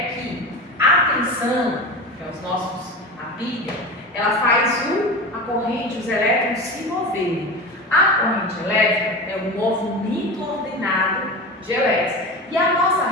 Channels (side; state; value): both; normal; correlation 0.28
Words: que a tensão, que é a pilha, ela faz a corrente, os elétrons se moverem. A corrente elétrica é um movimento ordenado de elétrons. E a